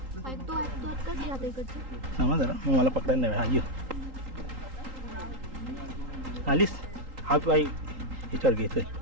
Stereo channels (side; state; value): left; late; 3.8 ms